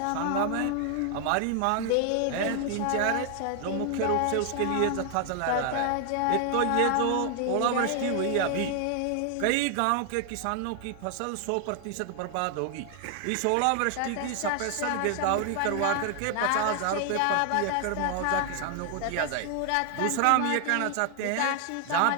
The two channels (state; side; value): different; both; correlation 0.00